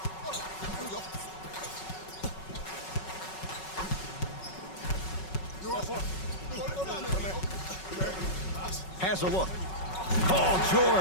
Has a look. Paul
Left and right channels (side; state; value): right; late; 5.4 ms